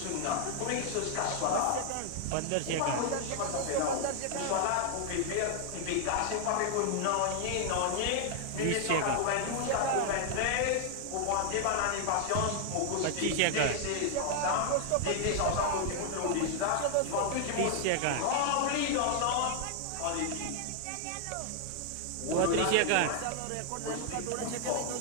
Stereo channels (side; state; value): both; different; correlation 0.00